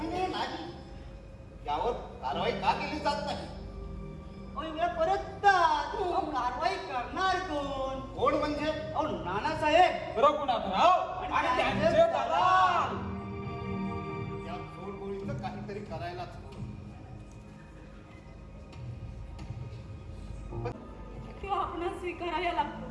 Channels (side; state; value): both; identical; correlation 1.00